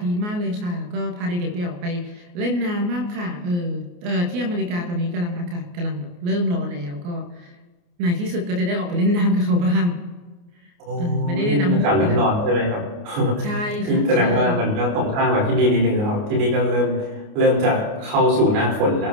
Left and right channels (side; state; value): left; late; 29 ms